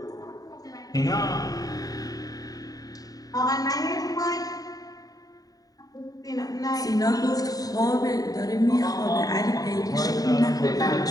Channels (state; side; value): late; right; 0.18 ms